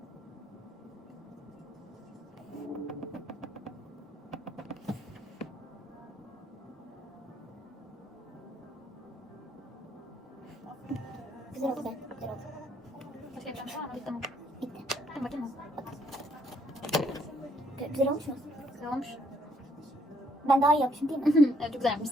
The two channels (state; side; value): normal; both; correlation 0.68